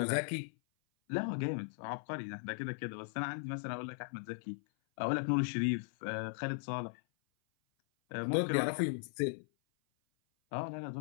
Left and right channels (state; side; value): silent; right; 53 dB below the other